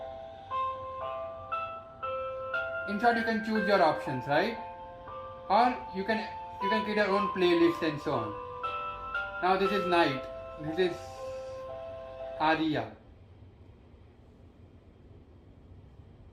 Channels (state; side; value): identical; both; correlation 1.00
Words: In short, you can choose your options, right? Or you can create your own playlist and so on. Now this is night. This is Aria.